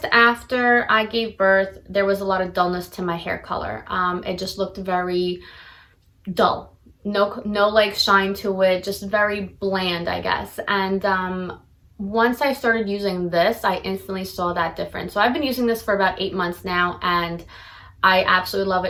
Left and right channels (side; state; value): both; identical; correlation 1.00